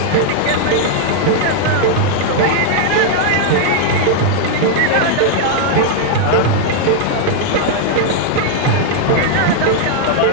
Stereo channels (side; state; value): both; different; correlation 0.00